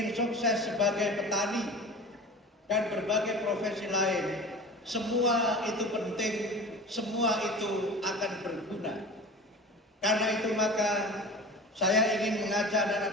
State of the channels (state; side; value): normal; both; correlation 0.36